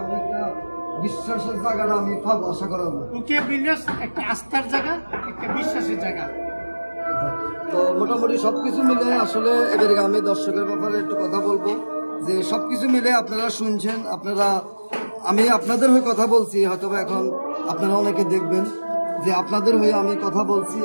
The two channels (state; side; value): inverted; both; correlation -1.00